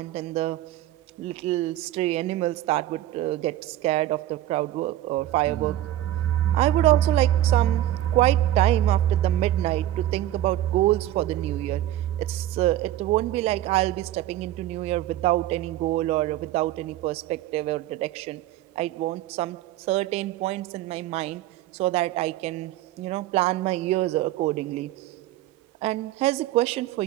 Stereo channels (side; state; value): left; quieter; 13.9 dB